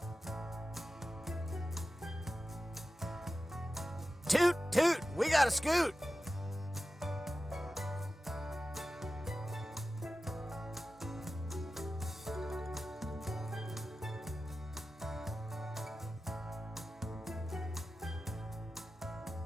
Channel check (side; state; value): both; normal; correlation 0.94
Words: Toot, toot, we got a scoot.